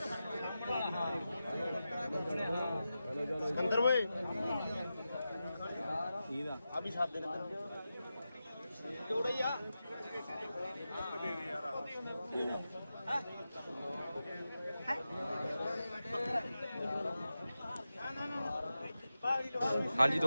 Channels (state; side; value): inverted; both; correlation -0.92